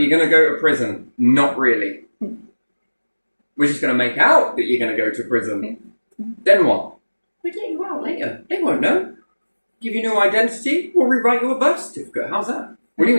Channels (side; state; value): both; inverted; correlation -1.00